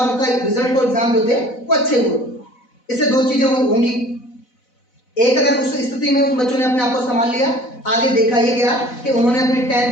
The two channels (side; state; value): right; late; 4.0 ms